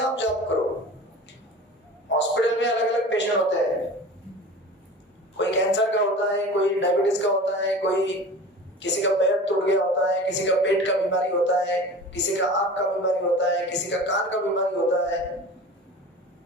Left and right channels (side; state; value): both; normal; correlation 0.37